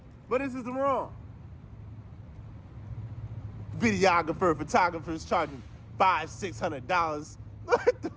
but this is the wrong. Videographer, photographers charging $500-$600.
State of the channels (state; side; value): identical; both; correlation 1.00